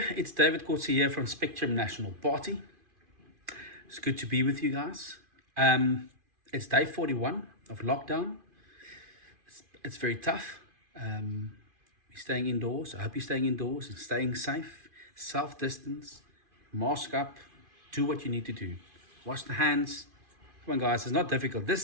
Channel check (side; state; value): left; late; 2.5 ms